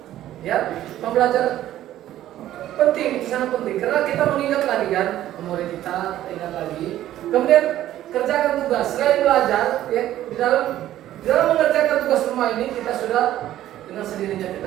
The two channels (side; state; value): left; quieter; 13.1 dB